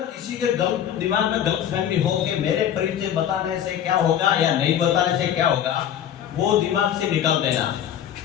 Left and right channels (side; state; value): right; quieter; 9.9 dB